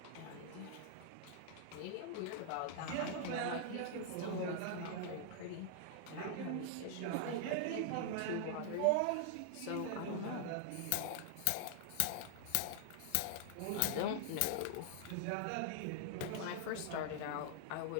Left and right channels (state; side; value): different; both; correlation 0.00